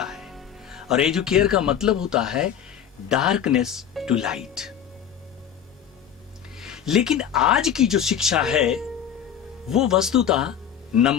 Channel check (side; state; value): right; quieter; 9.0 dB